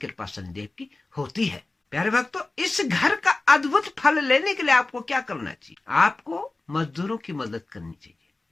शनिदेव की होती है। प्यारे भक्तों, इस घर का अद्भुत फल लेने के लिए आपको क्या करना चाहिए? आपको मजदूरों की मदद करनी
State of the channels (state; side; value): quieter; right; 3.2 dB